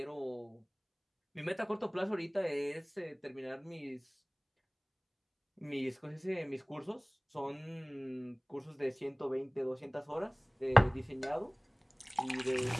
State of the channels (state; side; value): identical; both; correlation 1.00